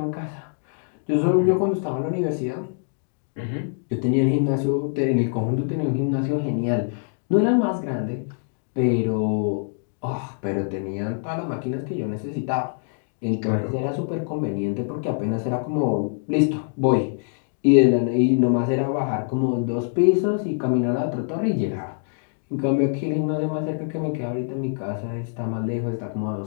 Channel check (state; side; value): silent; right; 62 dB below the other